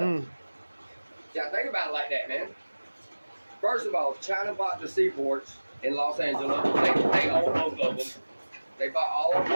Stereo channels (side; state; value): both; inverted; correlation -1.00